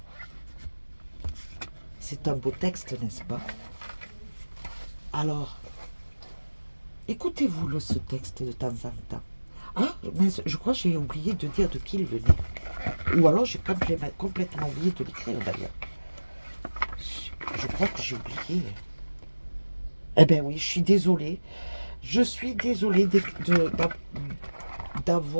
C'est un beau texte, n'est-ce pas? Alors, écoutez-vous ce texte de temps en temps. Ah, mais je crois que j'ai oublié de dire de qui il venait. Ou alors j'ai complètement oublié de l'écrire d'ailleurs. Je crois que j'ai oublié. Eh bien oui, je suis désolée. Je suis désolée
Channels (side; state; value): both; inverted; correlation -1.00